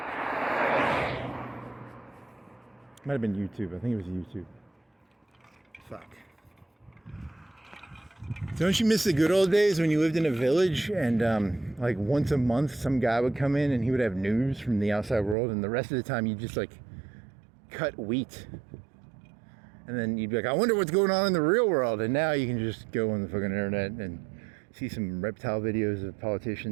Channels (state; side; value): drops out; left; at 15.4 s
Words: Might have been YouTube. I think it was YouTube. Fuck. Don't you miss the good old days when you lived in a village and like once a month some guy would come in and he would have news from the outside world, and the rest of the time you just like cut wheat, and then you'd be like, I wonder what's going on in the real world. And now you can just go on the fucking internet and see some reptile videos of